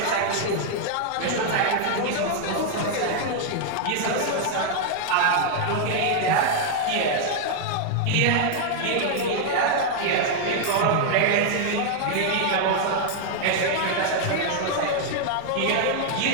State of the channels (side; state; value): both; different; correlation 0.00